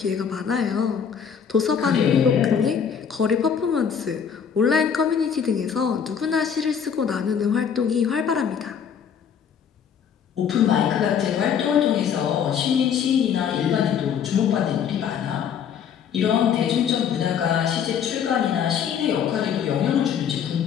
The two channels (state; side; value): quieter; right; 7.6 dB